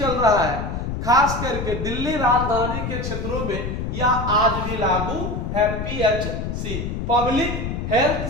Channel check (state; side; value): noise; left; rumble, 4 dB below the sound